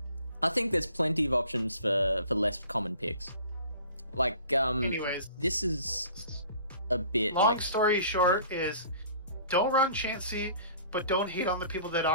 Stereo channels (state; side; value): inverted; both; correlation -0.48